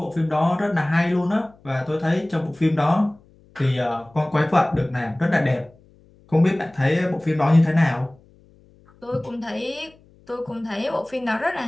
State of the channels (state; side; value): noise; left; hum, 29 dB below the sound